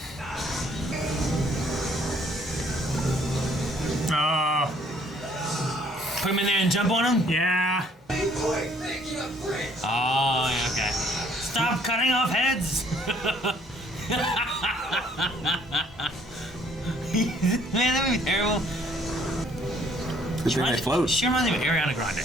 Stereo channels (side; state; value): both; normal; correlation 0.62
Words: Oh, Put him in there and jump on him. yeah. Oh, yeah, okay. Stop cutting off heads. Man, that would be terrible. Good thing they float. She reminds me of Ariana